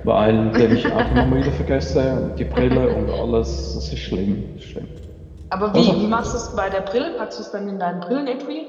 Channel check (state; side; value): identical; both; correlation 1.00